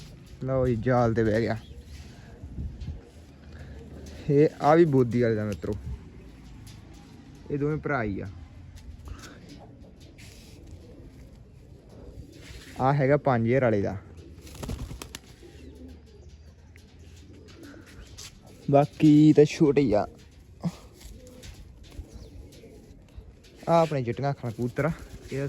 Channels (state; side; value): identical; both; correlation 1.00